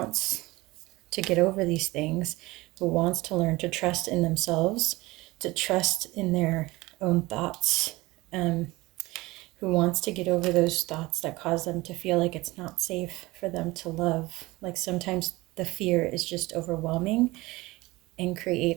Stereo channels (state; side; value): quieter; left; 20.6 dB